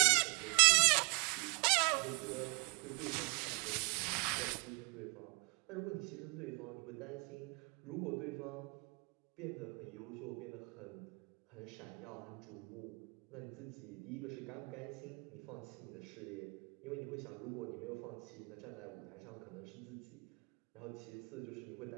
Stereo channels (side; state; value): left; quieter; 32.3 dB